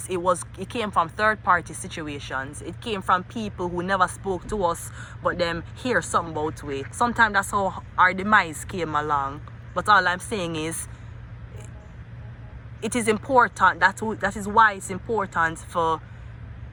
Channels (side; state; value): both; identical; correlation 1.00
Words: it came from third-party situations. It came from people who never spoke to us, but them hear something about it. Sometimes that's how our demise came along. But all I'm saying is, it is important. That is why it's important for.